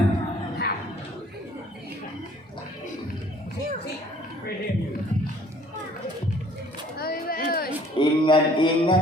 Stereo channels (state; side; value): normal; both; correlation 0.56